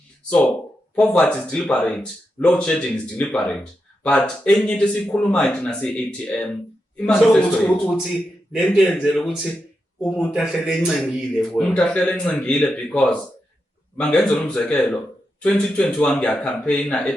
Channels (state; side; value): normal; both; correlation 0.87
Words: So poverty is deliberate, load shedding is deliberate, but enye into esikhulumayo thina si-ATM imanifesto ukuthi lento yenzela ukuthi umuntu ahlele encengile kuwe. Umuntu ahlele encengile because mangenzela umzekelo 2021 ngiyacampaigna